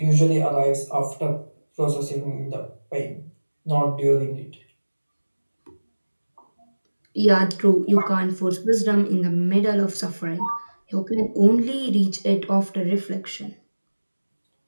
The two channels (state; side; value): inverted; both; correlation -1.00